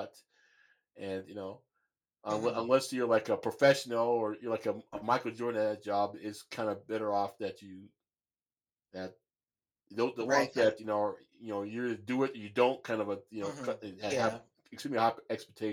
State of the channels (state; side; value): identical; both; correlation 1.00